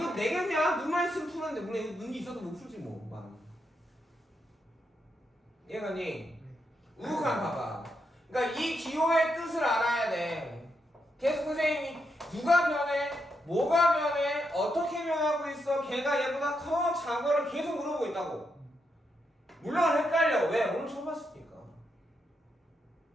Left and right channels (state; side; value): normal; both; correlation 0.82